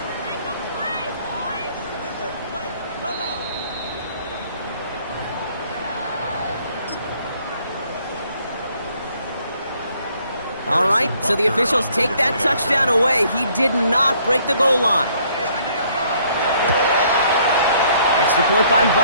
All right, so the officials take that touchdown away. He did not break the goal line. Extra point by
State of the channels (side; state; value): both; inverted; correlation -0.63